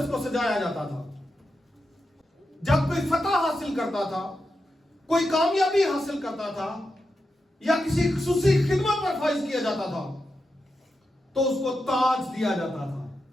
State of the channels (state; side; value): normal; both; correlation 0.88